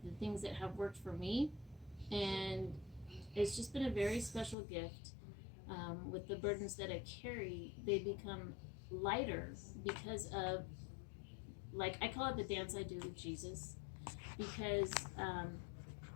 the things that have worked for me. And it's just been a very special gift. With the burdens that I carry, they become lighter because of, like, I call it the dance I do with Jesus. Because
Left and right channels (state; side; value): drops out; right; at 4.5 s